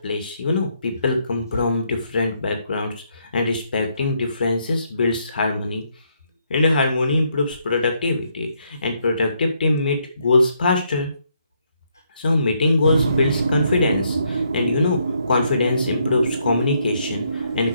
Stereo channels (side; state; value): both; inverted; correlation -0.74